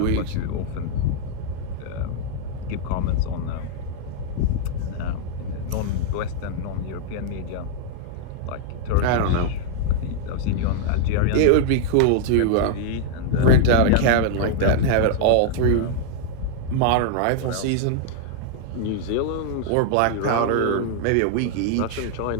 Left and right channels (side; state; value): both; different; correlation -0.01